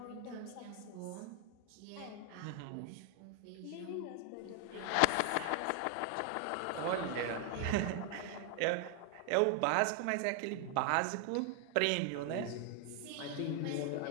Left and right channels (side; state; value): both; different; correlation 0.01